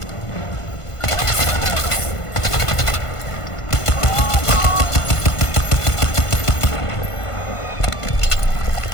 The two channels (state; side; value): late; right; 1.5 ms